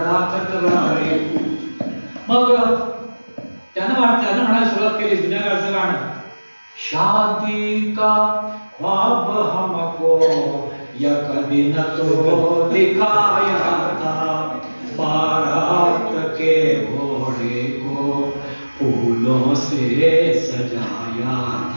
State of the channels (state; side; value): inverted; both; correlation -1.00